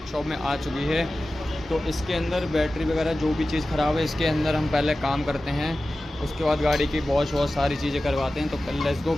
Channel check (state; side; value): normal; both; correlation 0.95